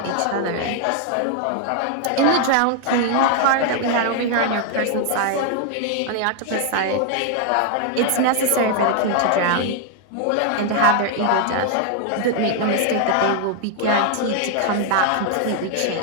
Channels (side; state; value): both; different; correlation 0.00